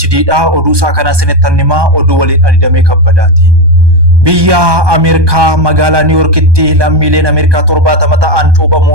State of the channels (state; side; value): late; left; 1.2 ms